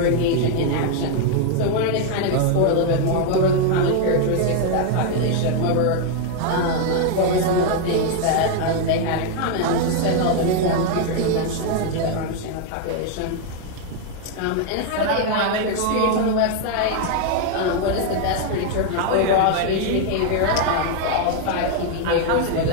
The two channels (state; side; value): different; both; correlation 0.00